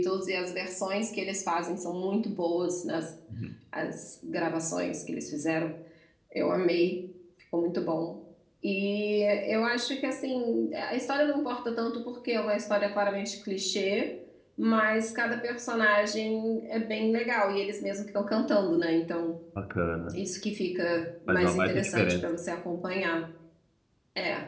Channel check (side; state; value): both; identical; correlation 1.00